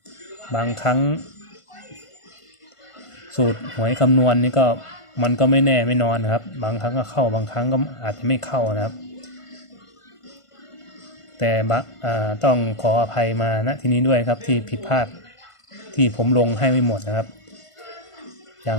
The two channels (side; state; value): right; late; 1.5 ms